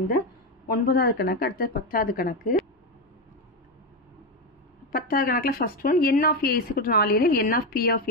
இந்த 9வது கணக்கு அடுத்த 10வது கணக்கு 10வது கணக்கில் first one n of a = 4 எனில் n of p of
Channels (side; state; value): both; normal; correlation 0.11